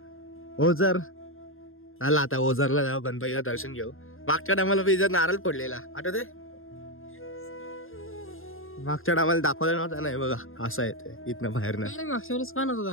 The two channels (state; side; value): late; right; 0.60 ms